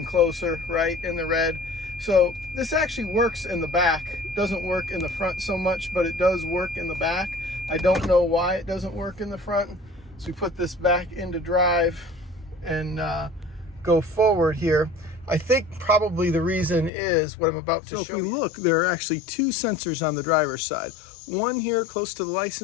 closer, right in the red. So this actually works in the back. It doesn't work in the front so much, but it does work in the back. I don't know why it doesn't work in the front. So we put this back into drive and go forward here. I think probably the reason is what I'm about to show you. If you look, there are actually 2 sensors on the driver's side. One here close to the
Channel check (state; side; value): drops out; right; at 16.9 s